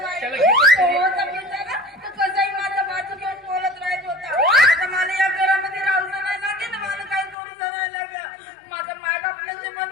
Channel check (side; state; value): right; drops out; at 7.4 s